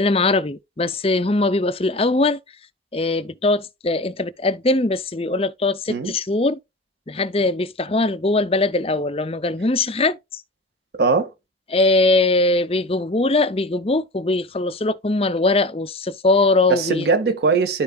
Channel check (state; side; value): normal; both; correlation 0.31